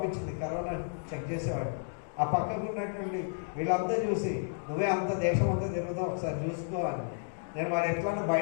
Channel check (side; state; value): right; silent; digital silence